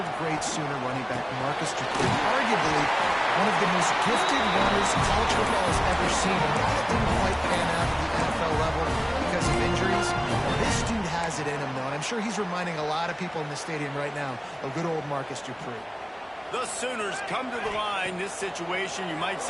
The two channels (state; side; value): identical; both; correlation 1.00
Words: great Sooner running back, Marcus Dupree, arguably one of the most gifted runners college football has ever seen. A guy that didn't quite pan out at the NFL level because of injuries. This dude has it in him, though, and I'm sure he's reminding a lot of people in the stadium right now of good old Marcus Dupree. The Sooners come to the line. This situation, you might